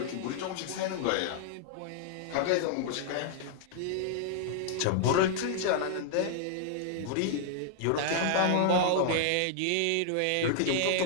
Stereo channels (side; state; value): both; different; correlation -0.01